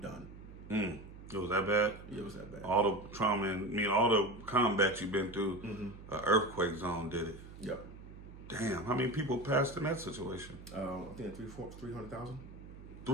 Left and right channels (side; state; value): right; noise; hum, 16 dB below the sound